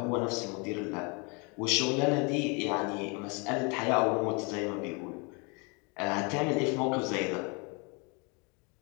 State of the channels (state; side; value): quieter; right; 31.7 dB